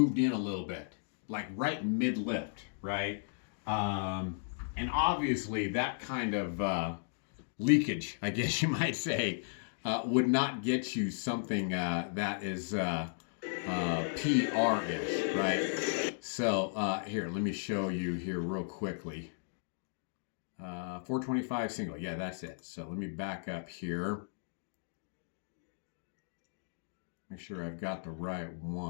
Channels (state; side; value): silent; right; digital silence